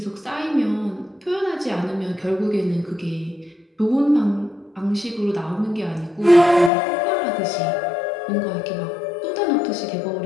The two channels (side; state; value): right; drops out; at 6.7 s